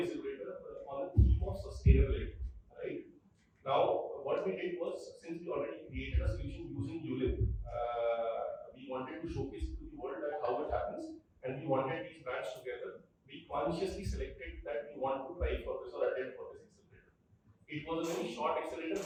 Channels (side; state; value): both; identical; correlation 1.00